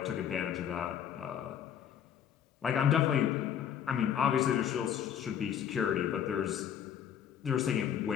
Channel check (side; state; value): right; quieter; 9.1 dB